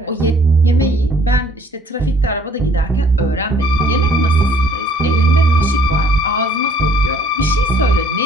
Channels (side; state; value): both; normal; correlation 0.59